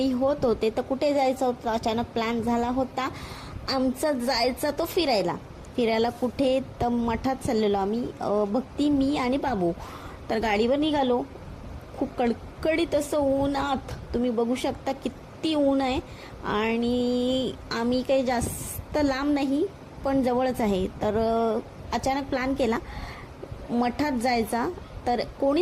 होत होते, तर कुठे जायचं होतं अचानक प्लॅन झाला होता आमचा जायचा तो फिरायला कुठे तर मठात चाललेलो आम्ही, भक्ती मी आणि बाबू। तर गाडीवर निघालो, खूप कडकडीत असं ऊनात तुम्ही बघू शकता किती ऊन आहे। आणि आम्ही काही जास्त लांब नाही पण जवळच आहे। तर अचानक प्लॅन केला मठात जायचा, तर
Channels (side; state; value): both; identical; correlation 1.00